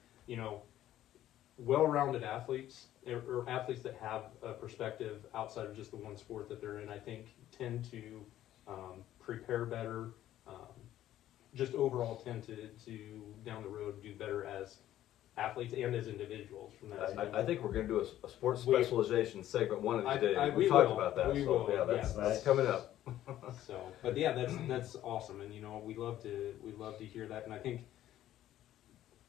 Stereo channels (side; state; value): right; quieter; 12.9 dB